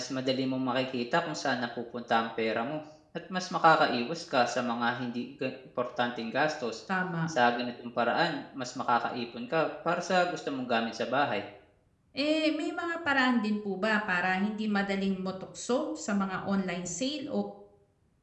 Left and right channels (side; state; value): both; identical; correlation 1.00